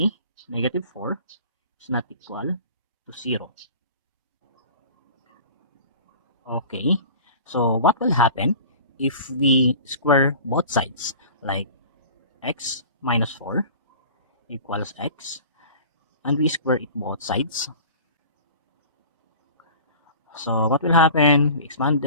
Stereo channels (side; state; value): both; inverted; correlation -0.41